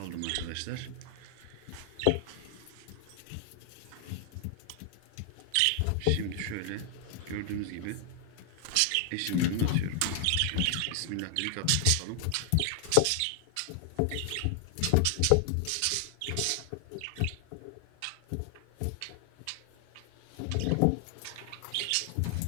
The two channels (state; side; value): different; both; correlation 0.00